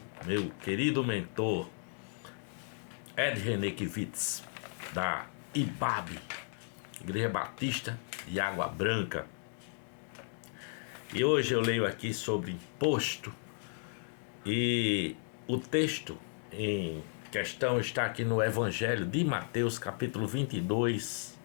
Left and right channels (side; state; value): right; silent; 55 dB below the other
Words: meu querido mentor Ed Renekiewicz, da IBAB, Igreja Batista de Água Branca. E hoje eu leio aqui sobre imposto, e o texto em questão está aqui no Evangelho de Mateus, capítulo 22,